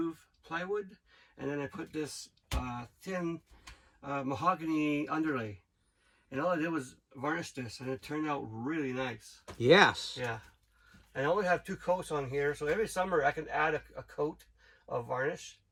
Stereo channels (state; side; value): identical; both; correlation 1.00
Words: plywood, and then I put this thin mahogany underlay, and all I did was varnish this, and it turned out really nice. Yes. Yeah. I only have 2 coats on here, so every summer I can add a coat of varnish.